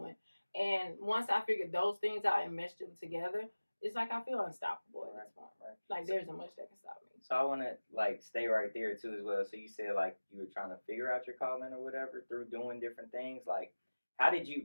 And once I figured those things out and meshed them together, it's like I feel unstoppable at this point. Like, there isn't much that can stop me. So I want to, like, stay right there, too, as well. So you said, like, you were trying to figure out your calling or whatever through doing different things. Like, how did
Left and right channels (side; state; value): both; inverted; correlation -1.00